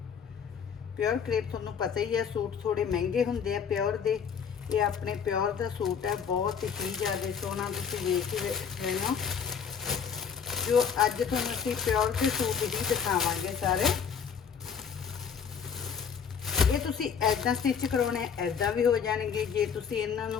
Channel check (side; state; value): right; quieter; 6.9 dB